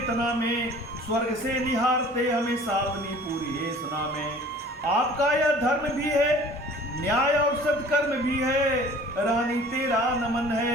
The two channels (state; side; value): normal; both; correlation 0.48